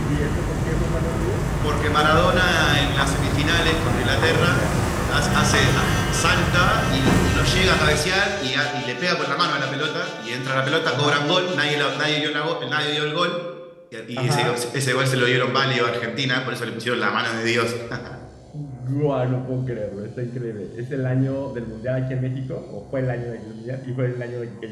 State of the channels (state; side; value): identical; both; correlation 1.00